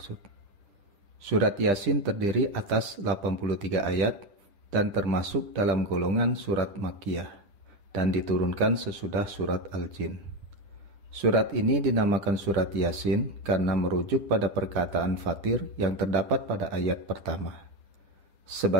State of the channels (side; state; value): left; late; 10 ms